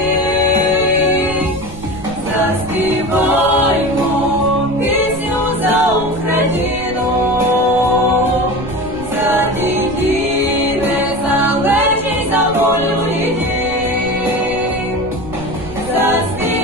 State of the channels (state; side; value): noise; right; rumble, 14 dB below the sound